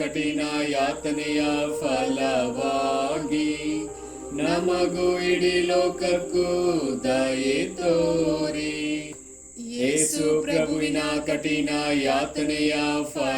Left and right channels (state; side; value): identical; both; correlation 1.00